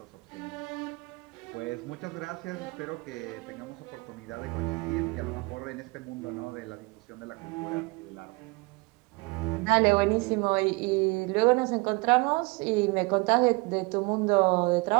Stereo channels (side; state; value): left; quieter; 27.0 dB